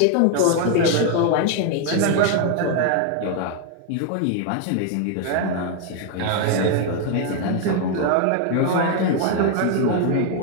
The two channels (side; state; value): both; different; correlation 0.01